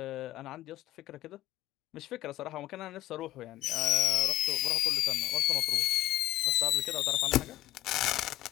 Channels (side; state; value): right; quieter; 15.1 dB